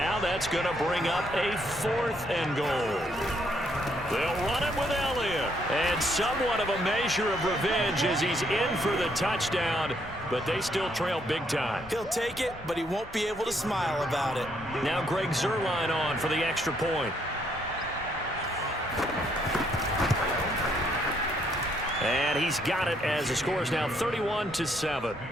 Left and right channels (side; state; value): both; normal; correlation 0.71